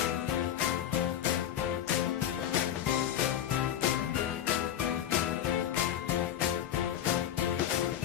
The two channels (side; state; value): right; quieter; 10.7 dB